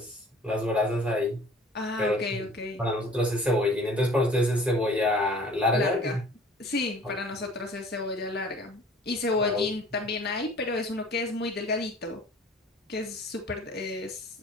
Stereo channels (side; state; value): both; normal; correlation 0.49